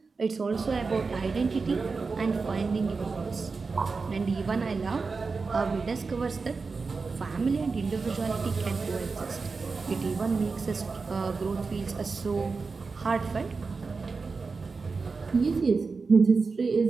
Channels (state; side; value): quieter; left; 4.5 dB